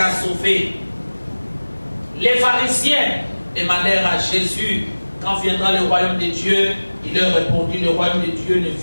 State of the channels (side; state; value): both; inverted; correlation -1.00